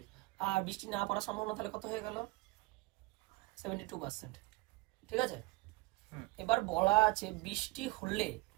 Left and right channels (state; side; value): quieter; left; 22.5 dB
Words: আর বৃষ্টি না পড়ার সম্ভাবনা তাহলে কত হয়ে গেল 72%। ঠিক আছে, এবার বলা আছে বৃষ্টি হলে,